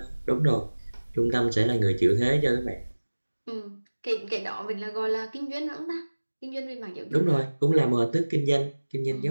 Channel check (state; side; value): inverted; both; correlation -1.00